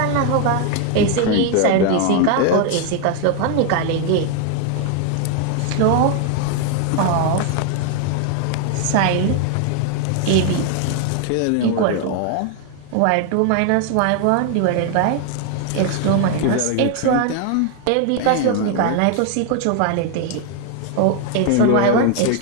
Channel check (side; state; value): both; different; correlation 0.01